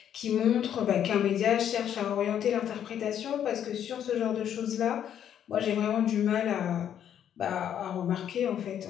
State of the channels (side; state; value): right; quieter; 9.7 dB